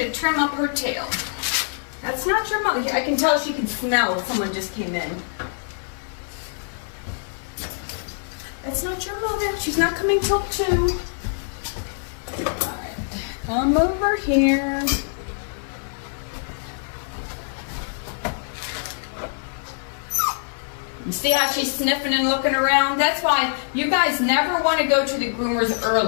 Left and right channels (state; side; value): silent; right; 56 dB below the other